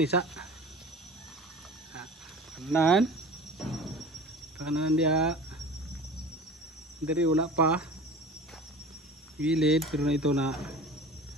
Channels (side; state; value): both; normal; correlation 0.38